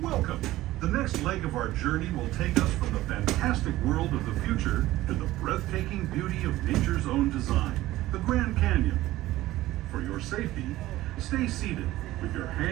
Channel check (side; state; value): left; quieter; 16.4 dB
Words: welcome. The next leg of our journey will take us from the fantastic world of the future to the breathtaking beauty of nature's own design, the Grand Canyon. For your safety, stay seated with your